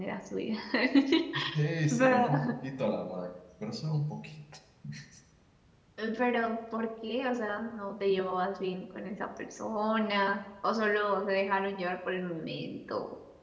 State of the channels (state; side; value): identical; both; correlation 1.00